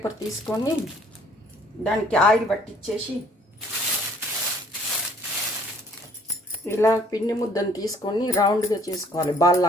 తీసుకొని దానికి ఆయిల్ పట్టించేసి ఇలా పిండి ముద్దను తీసుకొని రౌండ్గా చేసుకోవాలి, బాల్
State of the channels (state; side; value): normal; both; correlation 0.59